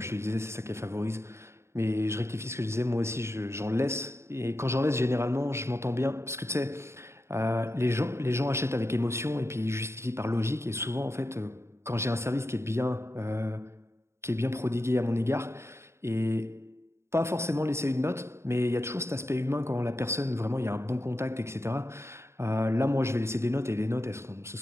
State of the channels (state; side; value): late; left; 0.13 ms